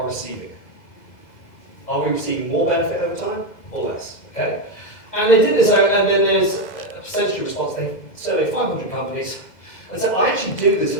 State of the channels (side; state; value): right; late; 2.0 ms